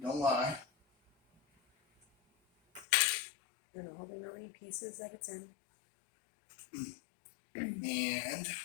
don't lie. And all the million pieces that it's in. And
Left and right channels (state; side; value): drops out; right; at 2.9 s